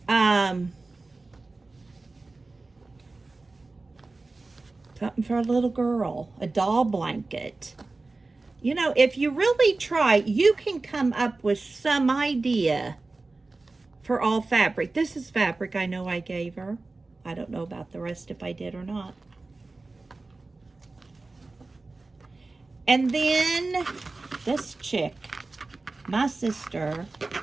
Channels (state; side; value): quieter; left; 3.4 dB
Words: Something for a little girl, a doll blanket. You know, if you really try, you can come up with some idea for all fabric. This is fabric I know I gave her. I don't know about the rest if I did or not. And then this chick, my sister,